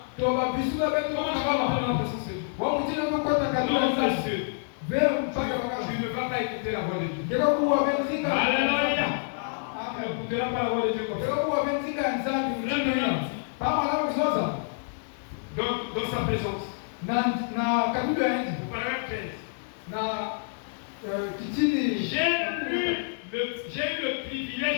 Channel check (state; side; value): silent; right; digital silence